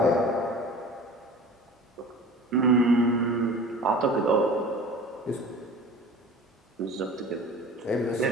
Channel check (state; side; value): normal; both; correlation 0.40